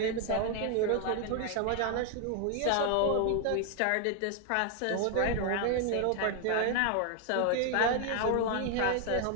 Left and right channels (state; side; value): different; both; correlation 0.00